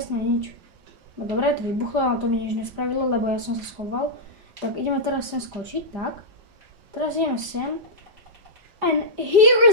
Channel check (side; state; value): left; late; 5.0 ms